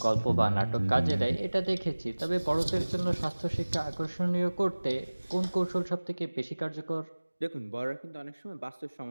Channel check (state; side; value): inverted; both; correlation -1.00